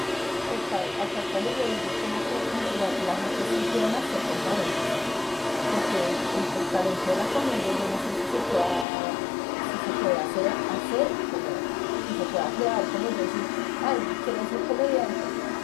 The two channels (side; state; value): right; drops out; at 8.8 s